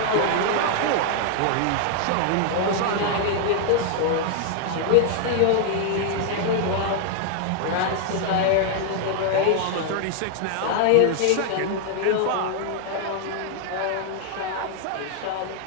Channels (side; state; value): both; different; correlation 0.00